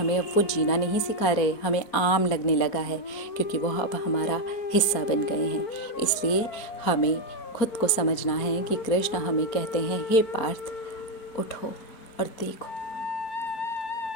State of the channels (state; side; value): late; right; 4.3 ms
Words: अब वो जीना नहीं सिखा रहे, हमें आम लगने लगा है क्योंकि वो अब हमारा हिस्सा बन गए हैं। इसलिए हमें खुद को समझना है कि कृष्ण हमें कहते हैं, हे पार्थ उठो और देखो,